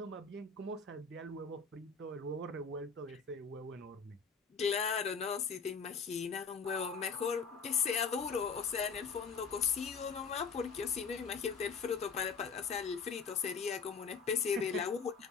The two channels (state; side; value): quieter; right; 5.5 dB